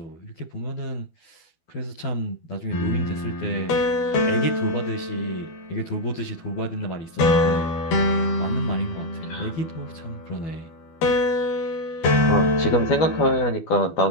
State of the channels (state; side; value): late; right; 12 ms